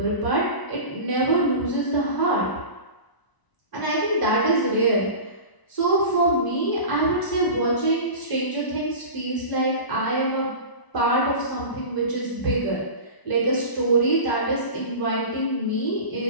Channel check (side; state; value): right; late; 1.0 ms